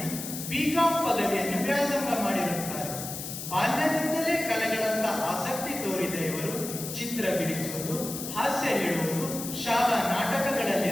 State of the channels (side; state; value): left; noise; hiss, 7 dB below the sound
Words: BCom ಪದವಿಯನ್ನು ವ್ಯಾಸಂಗ ಮಾಡಿರುತ್ತಾರೆ. ಬಾಲ್ಯದಿಂದಲೇ ಕಲೆಗಳತ್ತ ಆಸಕ್ತಿ ತೋರಿದ ಇವರು ಚಿತ್ರ ಬಿಡಿಸುವುದು, ಹಾಸ್ಯ ಹೇಳುವುದು, ಶಾಲಾ ನಾಟಕಗಳಲ್ಲಿ